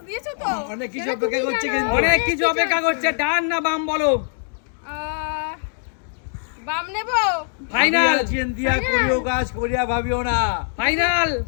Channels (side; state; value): right; silent; digital silence